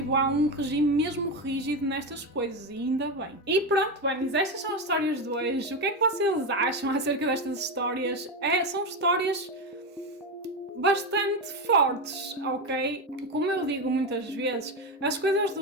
um regime mesmo rígido nestas coisas, e ainda bem. E pronto, Bunnies, estas são as histórias de hoje. O que é que vocês acham acerca destas histórias? São histórias bastante fortes, ok? Como eu digo muitas vezes, as coisas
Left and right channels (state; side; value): normal; both; correlation 0.14